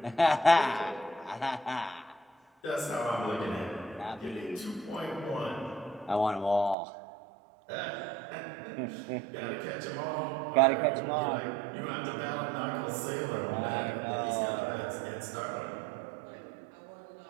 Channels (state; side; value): drops out; left; at 6.8 s